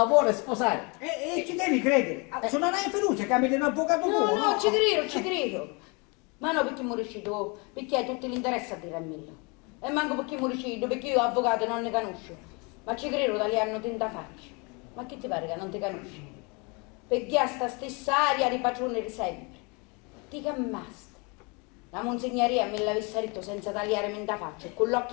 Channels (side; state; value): right; quieter; 30.5 dB